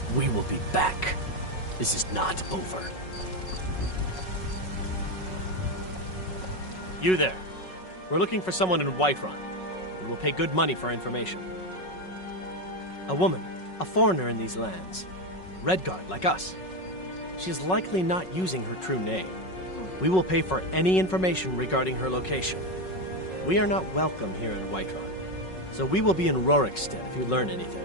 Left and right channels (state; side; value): late; right; 5.4 ms